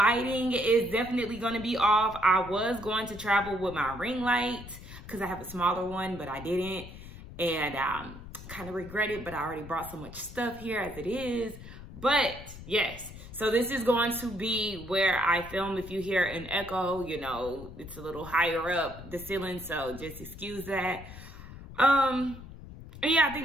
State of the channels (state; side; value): noise; left; rumble, 14 dB below the sound